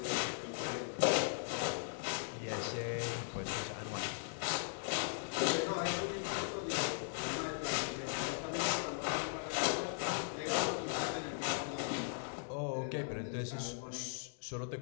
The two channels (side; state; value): right; silent; digital silence